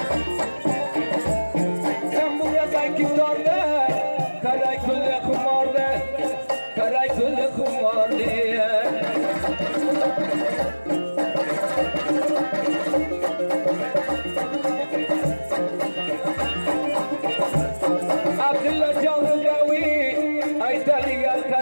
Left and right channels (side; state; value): both; inverted; correlation -1.00